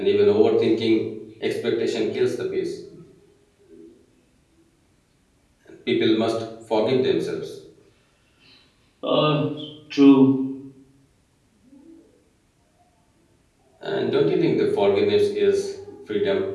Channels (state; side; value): identical; both; correlation 1.00